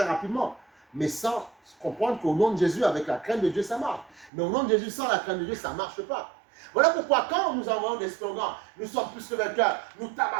rapidement. Mais sans comprendre qu'au nom de Jésus, avec la crainte de Dieu, ça marche. Mais au nom de Jésus, sans la crainte de Dieu, ça ne marche pas. Voilà pourquoi quand nous envoyons des slogans, nous sommes plus que vainqueurs, nous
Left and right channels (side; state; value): left; drops out; at 4.3 s